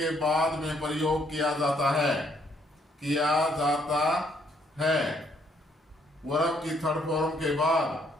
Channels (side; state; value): both; normal; correlation 0.69